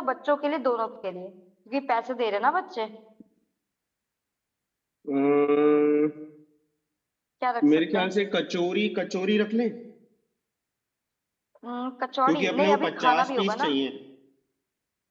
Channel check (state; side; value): identical; both; correlation 1.00